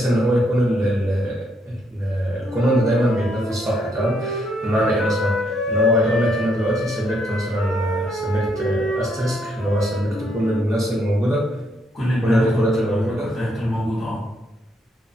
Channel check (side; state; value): both; normal; correlation 0.74